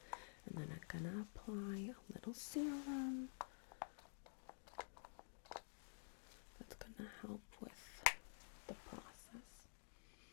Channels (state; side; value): silent; right; digital silence